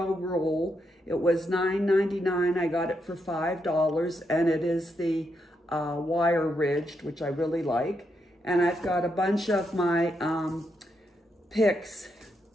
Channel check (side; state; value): both; normal; correlation 0.81